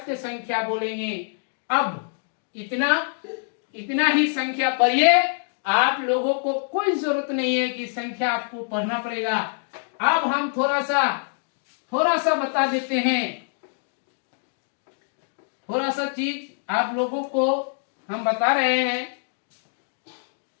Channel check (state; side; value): silent; right; digital silence